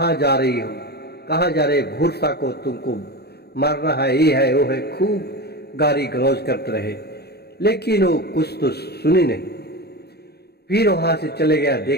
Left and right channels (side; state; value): right; late; 0.47 ms